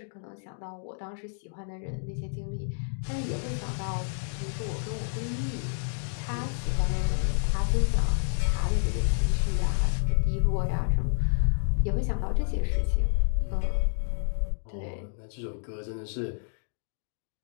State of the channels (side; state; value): right; silent; 58 dB below the other